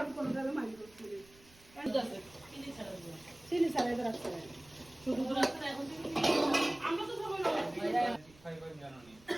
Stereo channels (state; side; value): noise; right; rumble, 26 dB below the sound